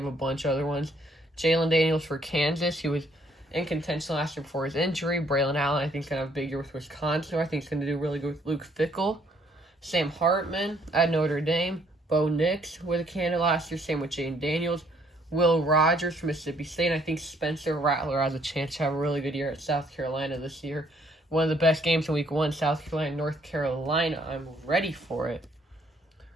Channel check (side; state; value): both; normal; correlation 0.66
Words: a bunch of other ones. Jalen Daniels for Kansas, who was in contention last year before his injury. Braylon Allen, I think, is going to have a big year with Wisconsin. I think he's going to do really good with Luke Fickell. Sam Hartman at Notre Dame. Bo Nix was a candidate last year. Same with Jane Daniels. Will Rogers from Mississippi State. And I think Spencer Rattler has a chance to have a really good year at South Carolina this year. One of the best games in week 1, South Carolina, North Carolina. I'm ready for it.